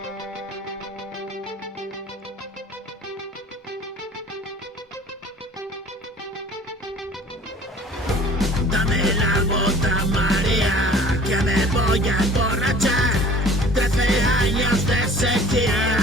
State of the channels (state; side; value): normal; both; correlation 0.48